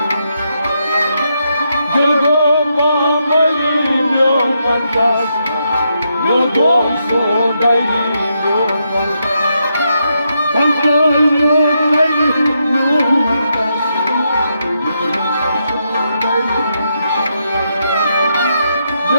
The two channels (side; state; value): both; inverted; correlation -0.81